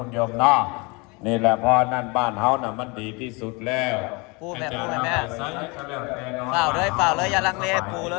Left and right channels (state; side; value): quieter; right; 28.3 dB